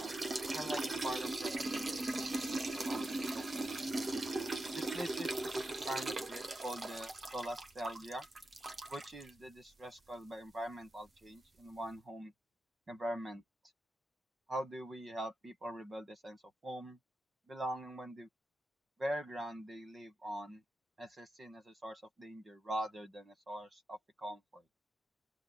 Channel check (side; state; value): both; normal; correlation 0.89